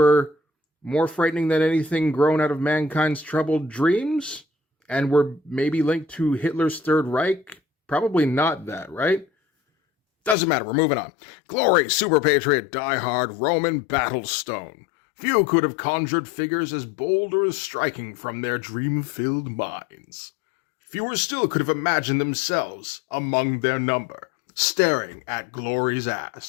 more frightening than anything grown out of mankind's troubled dreams? And were maybe linked to Hitler's Third Reich? Probably not that, right? Doesn't matter, we're moving on. Glory, Super Patriot, Die-Hard, Roman, Battlestone. Few could have conjured figures as bold or as striking from their dream-filled minds. Fewer still could have imagined themselves among their number, staring at Glory's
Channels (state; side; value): drops out; right; at 10.4 s